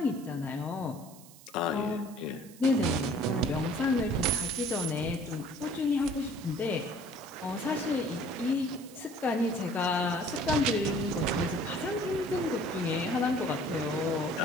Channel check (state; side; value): noise; right; hiss, 21 dB below the sound